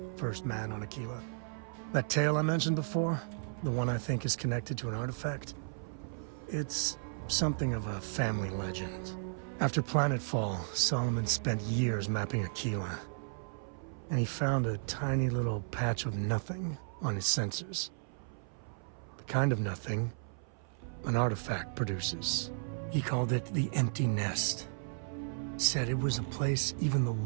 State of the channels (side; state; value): left; silent; 55 dB below the other